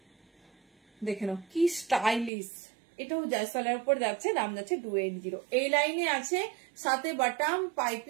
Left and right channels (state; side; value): drops out; left; at 2.3 s